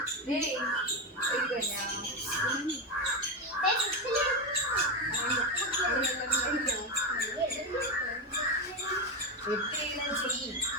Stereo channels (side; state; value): both; normal; correlation 0.13